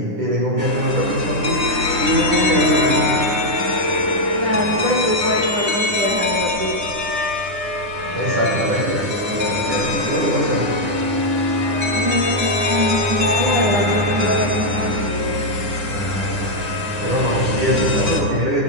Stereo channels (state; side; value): late; left; 10 ms